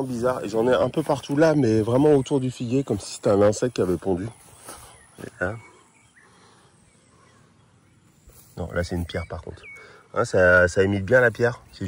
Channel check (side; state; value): both; identical; correlation 1.00